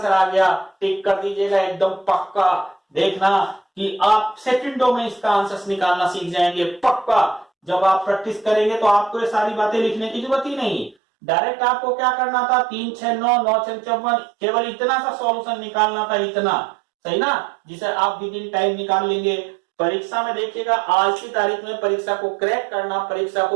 आ गया। टिक कर दीजिएगा एकदम पक्का, देखना कि आप सेकंडों में इसका आंसर निकालना सीख जाएंगे पक्का। जब आप प्रैक्टिस करेंगे तो आपको ये सारी बातें लिखने की जरूरत ही नहीं, डायरेक्ट आपको क्या करना था, 3 6 9 9 6 54, केवल इतना सा सॉल्यूशन निकालना था, इतना सही ना, जिसे आप विद इन टाइम निकाल लेंगे। परीक्षा में देखिएगा, आज की तारीख में परीक्षा को क्रैक करना, परीक्षा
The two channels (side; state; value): left; drops out; at 11.0 s